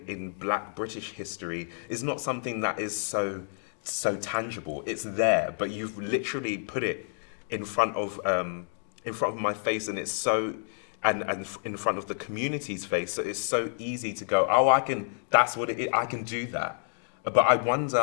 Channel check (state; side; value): silent; right; digital silence